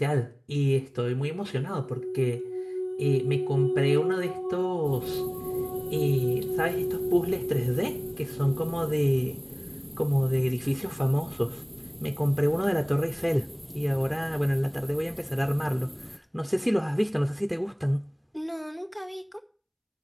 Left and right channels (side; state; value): both; identical; correlation 1.00